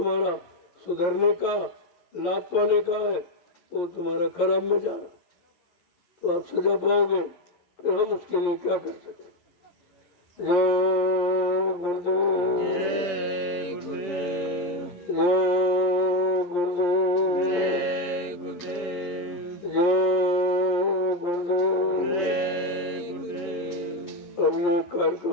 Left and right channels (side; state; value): right; late; 11 ms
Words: सुधरने का, लाभ पाने का है, तो तुम्हारा खराब में जा रहा, तो आप सजा पाओगे। फिर हम उसके लिए क्या कर सकते। जय गुरुदेव। जय गुरुदेव। जय गुरुदेव। जय गुरुदेव। जय गुरुदेव। जय गुरुदेव। अब ये